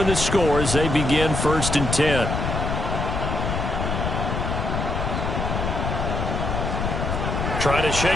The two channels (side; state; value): left; noise; rumble, 2 dB below the sound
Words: to score as they begin 1st and 10. Trying to